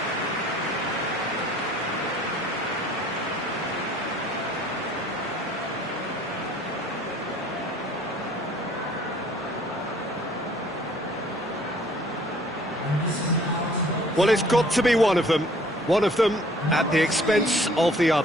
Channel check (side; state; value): both; normal; correlation 0.56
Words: Well, it's got to be one of them at the expense of the